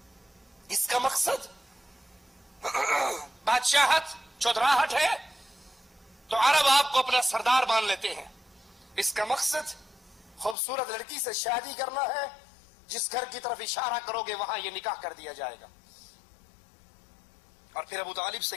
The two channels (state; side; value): drops out; right; at 10.6 s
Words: اس کا مقصد بادشاہت، چودراہٹ ہے تو عرب آپ کو اپنا سردار مان لیتے ہیں. اس کا مقصد خوبصورت لڑکی سے شادی کرنا ہے، جس گھر کی طرف اشارہ کرو گے وہاں یہ نکاح کر دیا جائے گا. اور پھر ابو طالب